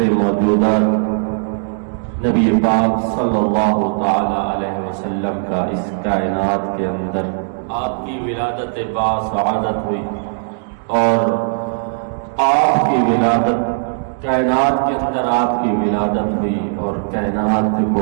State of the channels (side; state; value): left; silent; 67 dB below the other